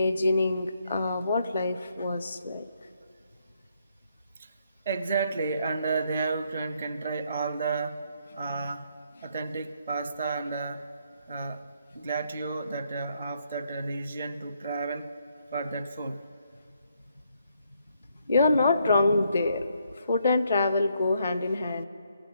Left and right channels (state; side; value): inverted; both; correlation -0.74